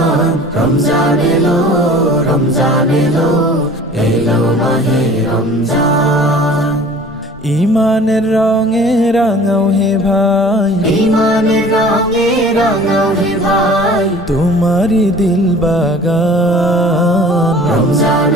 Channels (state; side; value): normal; both; correlation 0.46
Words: রমজান এলো, রমজান এলো, এলো মাহে রমজান। ইমানের রঙে রাঙাও হে ভাই, ইমানের রঙে রাঙাও হে ভাই, তোমারি দিল বাগান। রমজান